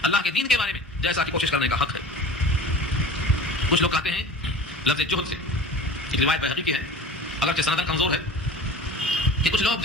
اللہ کے دین کے بارے میں، جیسا کہ کوشش کرنے کا حق ہے۔ کچھ لوگ کہتے ہیں لفظ جہد سے، ایک روایت بہقی کی ہے اگرچہ سندن کمزور ہے، کہ کچھ لوگ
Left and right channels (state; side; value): normal; both; correlation 0.40